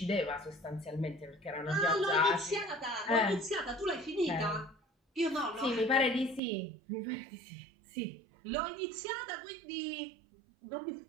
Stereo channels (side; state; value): left; drops out; at 6.4 s